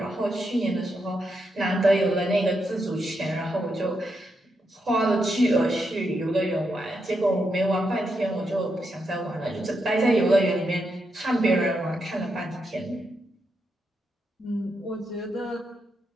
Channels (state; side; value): normal; both; correlation 0.83